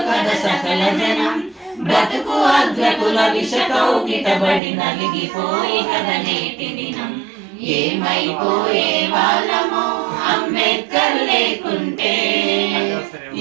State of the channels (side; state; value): left; drops out; at 4.6 s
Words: కథ సకల జనం, బ్రతుకు అగ్రకుల విష కౌగిటబడి నలిగిపోయి కథ నేటి దినం. ఏమైపోయే వాళ్ళమో అంబేద్కర్ లేకుంటే,